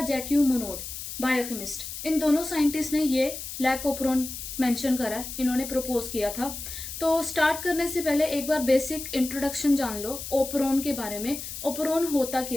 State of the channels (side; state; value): left; noise; hiss, 8 dB below the sound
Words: जैक्यू मोनोड, बायोकेमिस्ट। इन दोनों साइंटिस्ट ने ये लैक ऑफ प्रोन मेंशन करा है, इन्होंने प्रपोज किया था। तो स्टार्ट करने से पहले एक बार बेसिक इंट्रोडक्शन जान लो ओप्रोन के बारे में। ओप्रोन होता